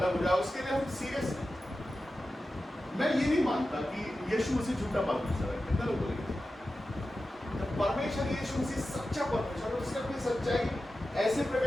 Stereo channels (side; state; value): both; normal; correlation 0.93